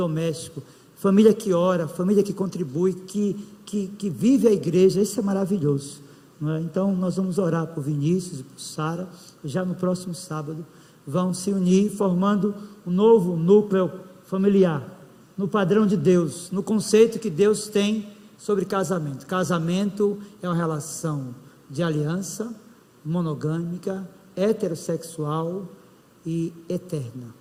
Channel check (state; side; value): identical; both; correlation 1.00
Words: família que ora, família que contribui, que vive a igreja, isso é maravilhoso, não é? Então nós vamos orar por Vinícius e por Sara, já no próximo sábado, vão se unir, formando um novo núcleo familiar, no padrão de Deus, no conceito que Deus tem sobre casamento. Casamento é uma relação de aliança, monogâmica, heterossexual e eterna,